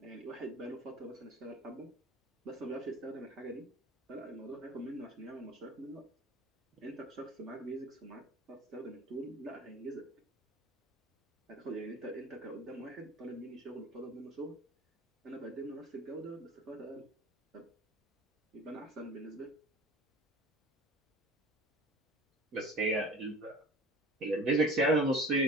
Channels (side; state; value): both; normal; correlation 0.41